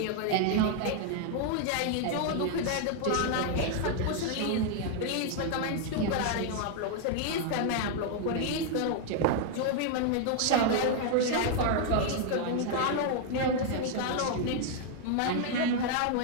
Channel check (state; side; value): different; both; correlation 0.00